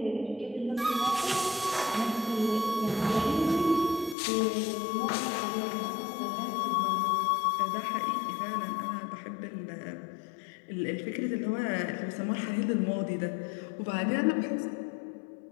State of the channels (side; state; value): right; drops out; at 4.2 s